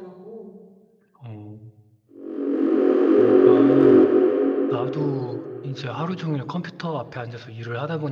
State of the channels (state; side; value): identical; both; correlation 1.00